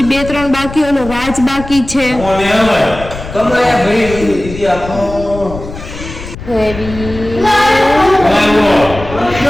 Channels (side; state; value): left; noise; rumble, 12 dB below the sound